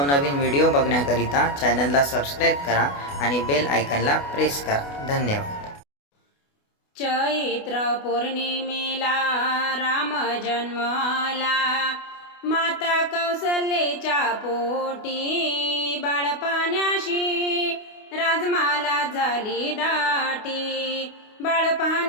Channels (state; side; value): late; right; 28 ms